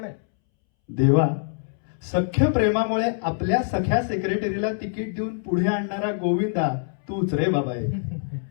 आहे. देवा, सख्य प्रेमामुळे आपल्या सख्या सेक्रेटरीला तिकीट देऊन पुढे आणणारा गोविंदा तूच रे बाबा आहे.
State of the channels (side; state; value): right; silent; 62 dB below the other